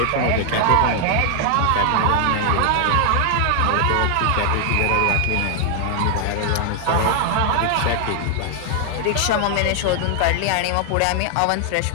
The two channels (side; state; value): both; different; correlation 0.00